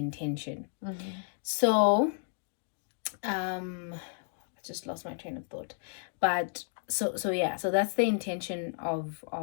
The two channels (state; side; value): silent; right; digital silence